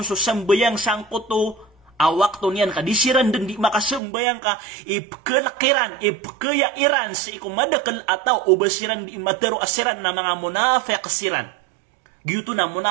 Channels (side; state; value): left; drops out; at 4.0 s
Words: so sambayang sangkoto, awak to niyan ka, di siran dan di makasambayang ka, ipkelakiran, ipkayairan si ko madakal ataw, ubasiran di matero asiran na mga munafiq siran. Gitu na